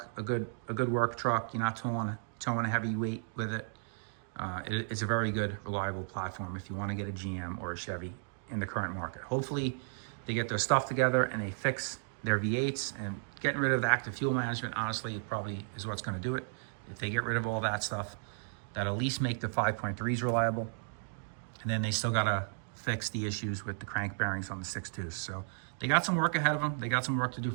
a good work truck, you're not towing a heavy weight with it, it's a very good, reliable platform if you want to get a GM or a Chevy in the current market. Hopefully they get their stuff together and they fix their V8s, and getting rid of the active fuel management, honestly, it probably is what's going to do it. If they get rid of all that stuff, that'll at least make the 5.3s reliable. And then they still got to fix the issues with the crank bearings on the 6.2s. So they got some work ahead of them. They got some work to do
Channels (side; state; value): left; silent; digital silence